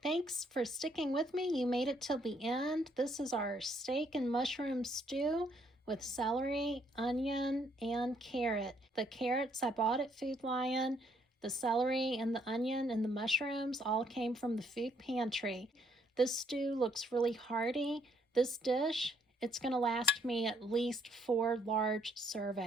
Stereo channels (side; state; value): both; normal; correlation 0.69